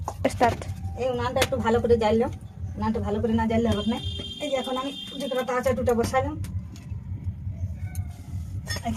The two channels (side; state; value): both; identical; correlation 1.00